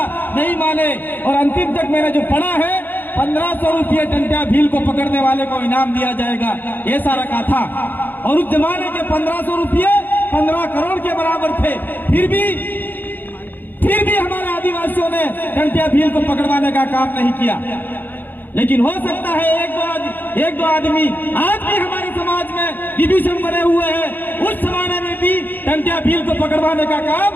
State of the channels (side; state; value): right; late; 0.089 ms